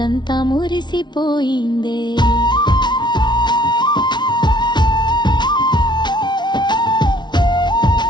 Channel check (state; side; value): late; right; 0.21 ms